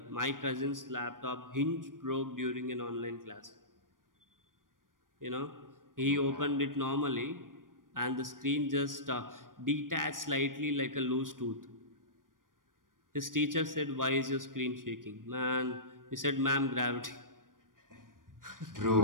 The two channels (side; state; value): left; late; 0.90 ms